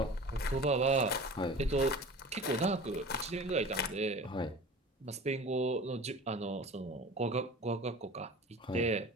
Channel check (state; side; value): normal; both; correlation 0.39